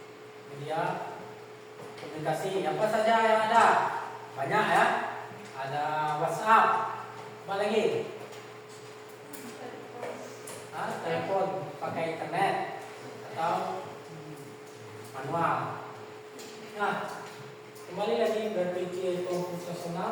media komunikasi. Apa saja yang ada? Banyak ya. Ada WhatsApp, apa lagi? Telepon pakai internet atau manual. Nah, kembali lagi berpikir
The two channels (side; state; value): both; identical; correlation 1.00